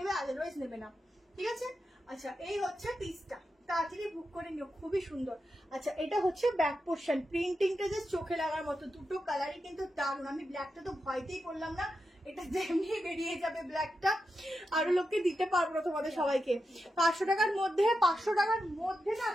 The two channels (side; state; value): both; normal; correlation 0.88